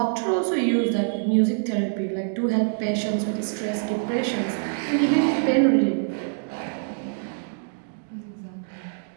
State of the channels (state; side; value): silent; left; 62 dB below the other